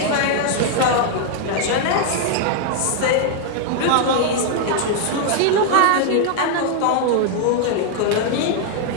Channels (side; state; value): both; different; correlation 0.00